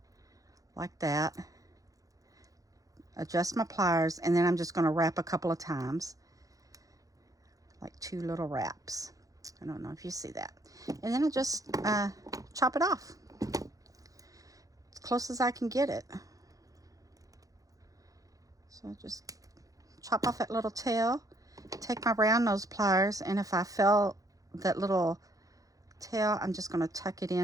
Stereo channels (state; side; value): late; left; 0.17 ms